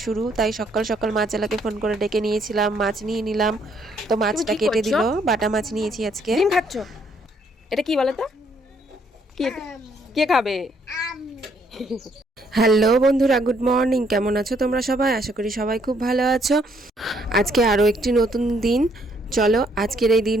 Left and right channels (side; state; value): both; normal; correlation 0.68